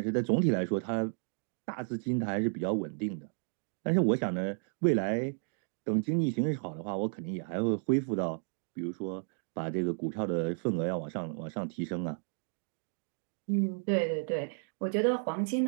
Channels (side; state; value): left; silent; 56 dB below the other